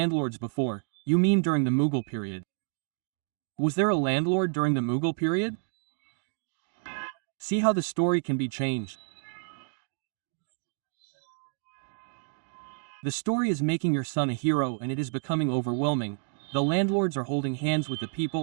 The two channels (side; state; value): left; silent; 58 dB below the other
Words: before? You mean during the Mughal period? Was there a landlord during the Mughal period? See how the story can be changed. The story is making your son a hero and it is becoming overwhelming. The landlords are holding hands with the